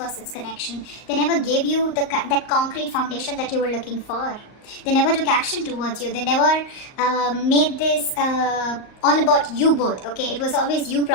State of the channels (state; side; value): late; right; 38 ms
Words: connection. They never gave you that concrete foundation that you were looking for. They never took action towards you. They never made this all about you both, okay? It was always you